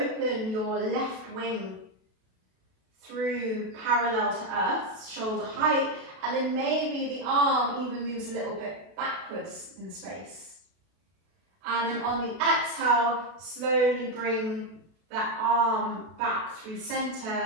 your left wing through parallel to earth, shoulder height, and then maybe the arm even moves a little bit backwards in space. And then on the exhale, slowly bring that arm back through center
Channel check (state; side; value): late; left; 32 ms